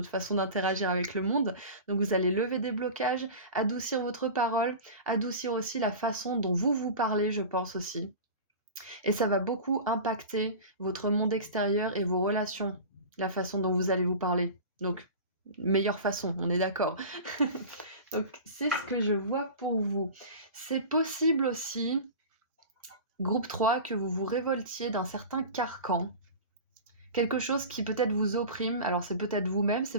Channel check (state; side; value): inverted; both; correlation -0.33